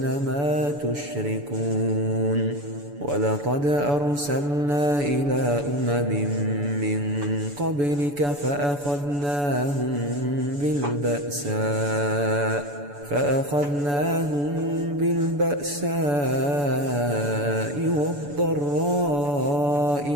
ما تشركون ولقد أرسلنا إلى من قبلك فأخذناهم بالبأساء والضراء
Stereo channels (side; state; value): left; late; 7.0 ms